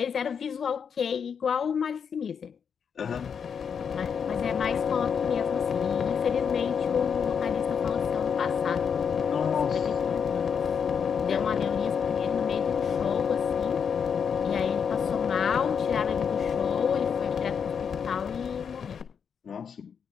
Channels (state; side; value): quieter; right; 6.9 dB